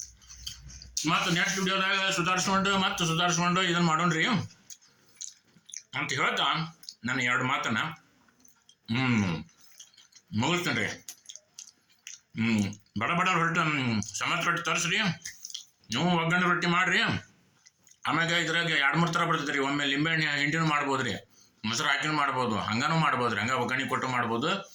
ಮತ್ತು ನೆಕ್ಸ್ಟ್ ವಿಡಿಯೋದಾಗ ಸುಧಾರಿಸ್ಕೊಂಡು ಇದನ್ನು ಮಾಡೋಣ್ರಿ ಅಂತ ಹೇಳ್ತಾ ನಾನು 2 ಮಾತನ್ನ ಮುಗಿಸ್ತೇನೆ ರೀ. ಬಡ ರೊಟ್ಟಿ ಸಮತ್ ರೊಟ್ಟಿ ತರಿಸ್ರಿ, ನೀವು ಒಗ್ಗರಣೆ ರೊಟ್ಟಿ ಮಾಡಿರಿ. ಆಮ್ಯಾಗ ಇದ್ರಾಗ 2-3 ಥರ ಬರ್ತದೆ ರೀ. ಒಮ್ಮೆ ಲಿಂಬೆಹಣ್ಣು ಹಿಂಡಿನೂ ಮಾಡ್ಬೋದು ರೀ, ಮೊಸರು ಹಾಕಿನೂ ಮಾಡ್ಬೋದು, ಹಂಗನೂ ಮಾಡ್ಬೋದು ರೀ, ಹಂಗೆ ಒಗ್ಗರಣೆ ಕೊಟ್ಟು ಮಾಡ್ಬೋದು.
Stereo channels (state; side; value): identical; both; correlation 1.00